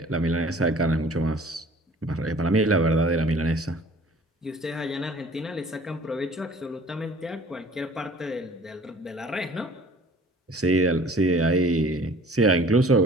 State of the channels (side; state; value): both; normal; correlation 0.50